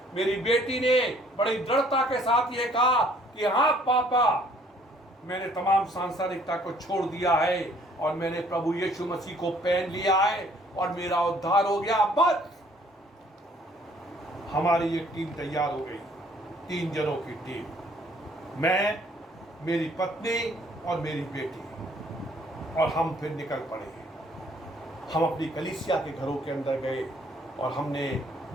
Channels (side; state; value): both; normal; correlation 0.61